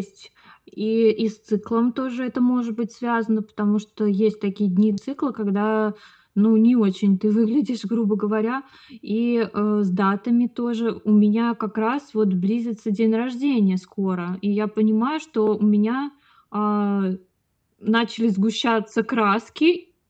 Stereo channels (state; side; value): identical; both; correlation 1.00